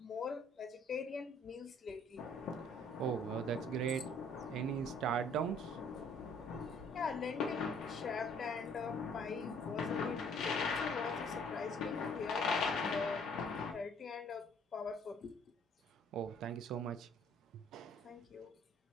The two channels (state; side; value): normal; both; correlation 0.59